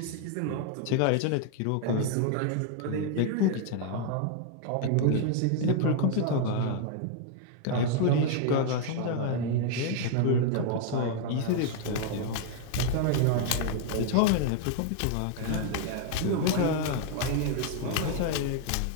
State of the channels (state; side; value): different; both; correlation 0.00